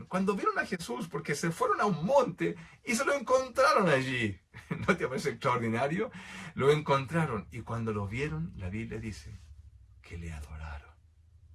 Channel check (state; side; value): identical; both; correlation 1.00